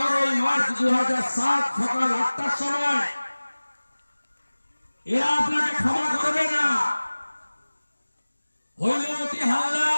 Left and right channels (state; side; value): inverted; both; correlation -1.00